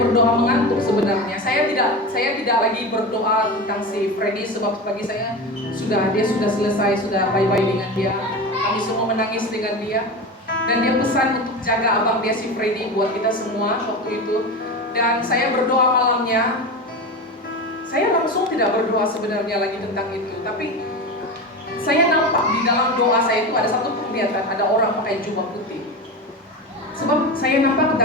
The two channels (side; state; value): both; normal; correlation 0.24